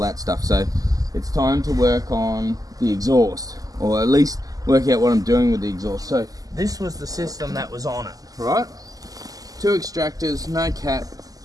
stuff. So it's time to work on the exhaust, or at least work out what I'm doing with the exhaust. So this was the system that was on it, right? 2 extractors, no cap,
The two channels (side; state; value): left; late; 0.17 ms